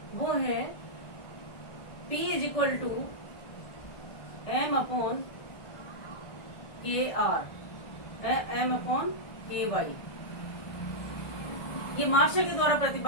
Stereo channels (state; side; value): late; right; 1.5 ms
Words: वो है P is equal to M upon KR, M upon KY। ये मार्शल के द्वारा